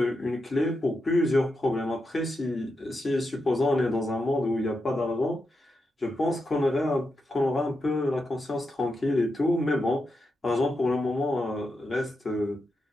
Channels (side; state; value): both; normal; correlation 0.87